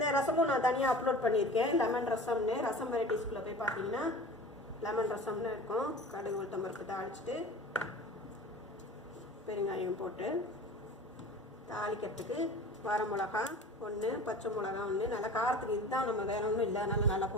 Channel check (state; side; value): normal; both; correlation 0.39